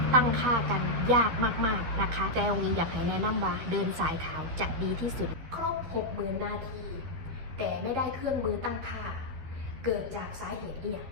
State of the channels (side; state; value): left; late; 12 ms